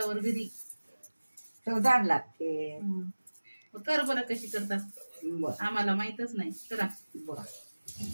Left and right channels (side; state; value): both; inverted; correlation -1.00